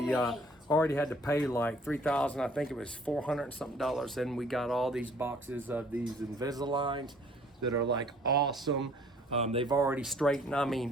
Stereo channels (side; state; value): both; normal; correlation 0.57